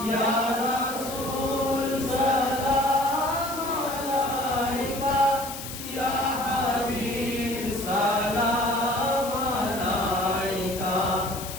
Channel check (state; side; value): noise; left; hiss, 10 dB below the sound